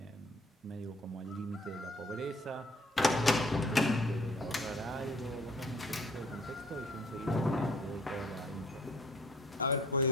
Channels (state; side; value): normal; both; correlation 0.57